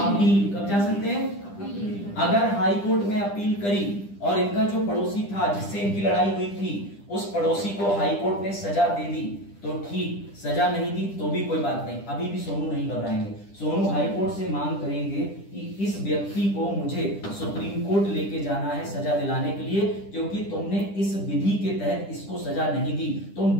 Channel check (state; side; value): late; right; 10 ms